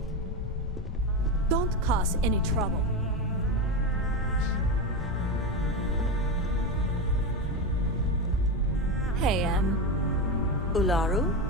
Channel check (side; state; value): both; normal; correlation 0.16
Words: Don't cause any trouble. Hey, Ularu?